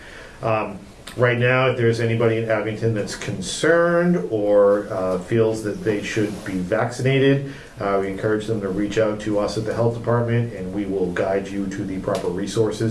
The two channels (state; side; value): identical; both; correlation 1.00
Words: Right now, if there's anybody in Abington that's concerned or feels that they should be vaccinated, we encourage them to reach out to us at the health department, and we will guide you to the proper